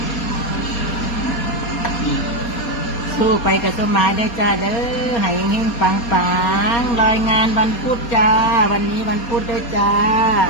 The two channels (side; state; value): right; late; 4.2 ms